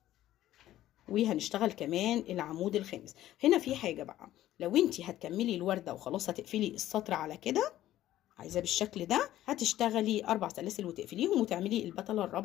وهنشتغل كمان العمود الخامس. هنا في حاجة بقى، لو انتي هتكملي الوردة وخلاص هتقفلي السطر على كده عايزاه بالشكل ده، هتشتغلي 4 سلاسل وتقفليهم وتعملي البتلة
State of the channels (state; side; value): quieter; right; 13.7 dB